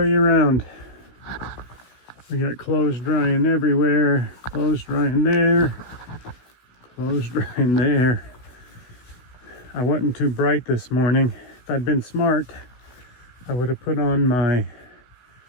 you around. We got clothes drying everywhere, clothes drying there, clothes drying there. I wasn't too bright this morning. If I'd been smart, I would have put on my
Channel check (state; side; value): late; right; 16 ms